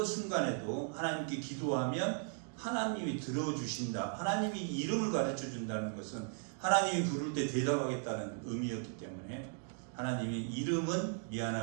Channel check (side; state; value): left; silent; 53 dB below the other